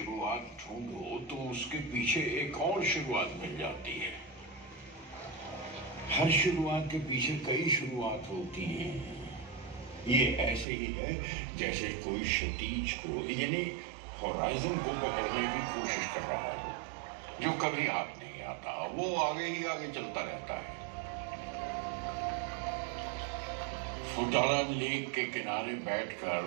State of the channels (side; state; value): left; drops out; at 10.7 s